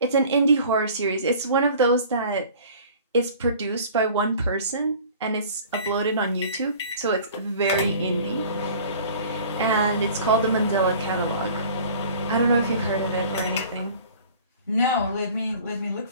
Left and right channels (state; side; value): inverted; both; correlation -0.46